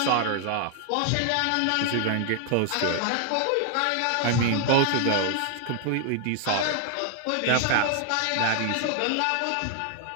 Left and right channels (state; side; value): different; both; correlation 0.00